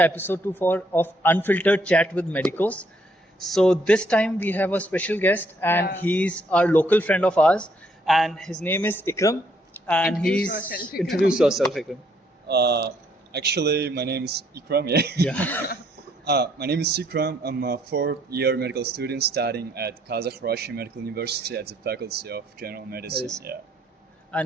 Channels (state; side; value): normal; both; correlation 0.69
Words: episode 2 of Unfiltered Chat with Medicos. So this time we have a special guest, and he's our local friend of ours, and his name is Ikram, and introduce yourself, Ikram. Actually, my name is Ikram. My name is Ikram. I'm a fourth-year medical student studying at Kazakh-Russian Medical University at the Faculty of General Medicine.